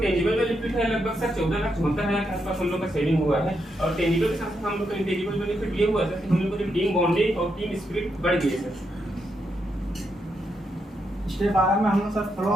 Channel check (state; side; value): normal; both; correlation 0.81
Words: टेंजिबल बेनिफिट है लगभग सर 14,74,000 के आसपास हम लोग का सेविंग हुआ है। और टेंजिबल के साथ हम लोग का इंटेंजिबल बेनिफिट ये हुआ सर कि हम लोग को टीम बॉन्डिंग और टीम स्पिरिट बढ़ गई है सर। स्टेप 12 में हम लोग सर फ्लो